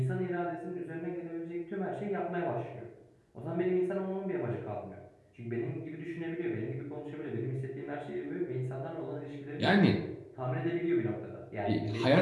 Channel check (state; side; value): identical; both; correlation 1.00